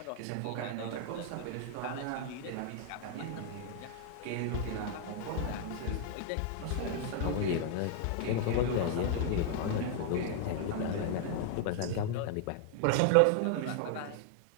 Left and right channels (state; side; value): different; both; correlation 0.00